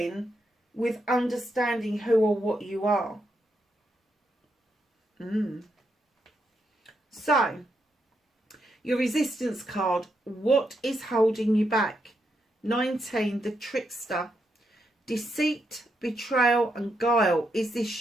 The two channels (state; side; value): normal; both; correlation 0.81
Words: with understanding who or what you are. So, your resistance card, what is holding you back? 19, the trickster. Deceit, betrayal and guile. Is